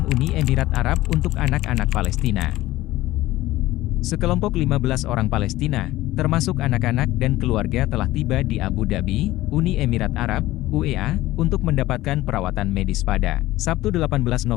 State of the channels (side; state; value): right; quieter; 16.7 dB